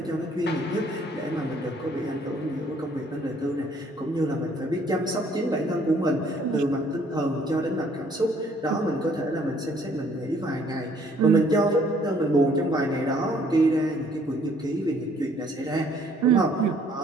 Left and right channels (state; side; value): normal; both; correlation 0.62